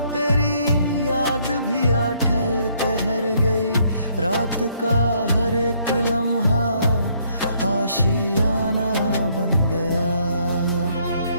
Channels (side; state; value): both; inverted; correlation -0.68